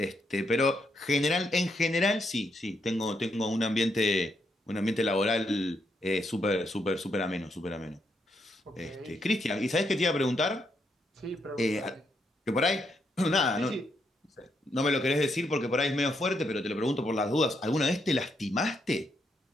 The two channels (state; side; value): normal; both; correlation 0.78